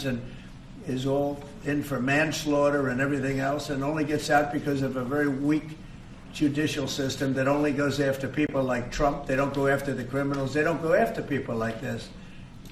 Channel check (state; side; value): identical; both; correlation 1.00